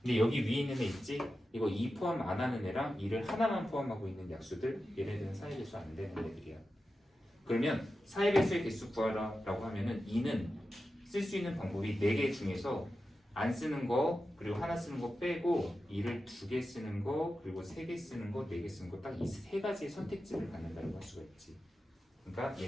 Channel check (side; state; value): both; normal; correlation 0.92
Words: 근데 여기 위에 있는 애 있지? 이거 2 포함 안 하는 애랑 2를 하나만 포함하고 있는 약수들 얘네들은 4의 배수 안 되는 애들이야. 그러면 4의 배수의 개수 구하라라고 하면은 2는 쓸 수 있는 방법이 4개 중에서 안 쓰는 거 그리고 하나 쓰는 거 빼고 2를 2개 쓰는 거 그리고 3개 쓰는 거 4개 쓰는 거 딱 이 세 가지의 선택지를 갖는다고 할 수가 있지. 그러니까